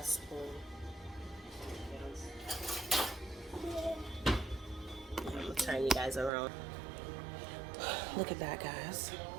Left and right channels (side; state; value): left; drops out; at 6.3 s